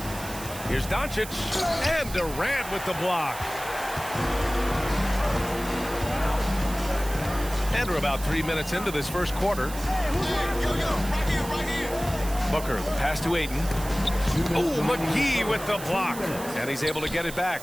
Here's Doncic. And Durant with the block. And we're about 3 minutes into this first quarter. Booker, the pass to Ayton. Oh, McGee with the block. And he's able to get it back.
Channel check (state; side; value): noise; right; hiss, 12 dB below the sound